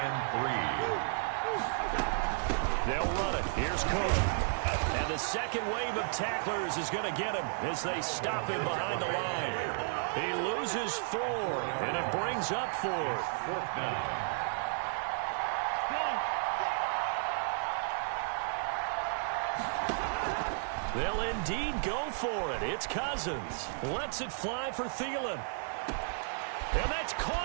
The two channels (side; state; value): left; silent; 56 dB below the other